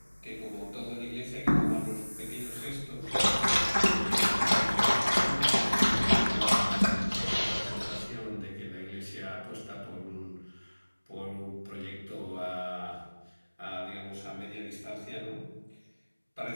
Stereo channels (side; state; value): both; inverted; correlation -1.00